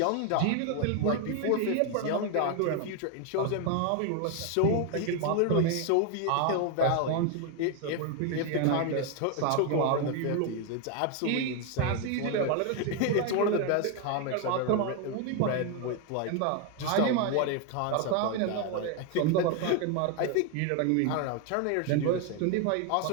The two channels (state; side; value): different; both; correlation 0.01